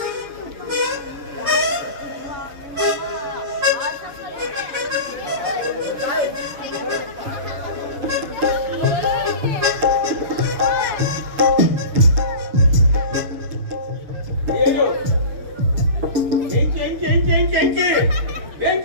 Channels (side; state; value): left; late; 7.4 ms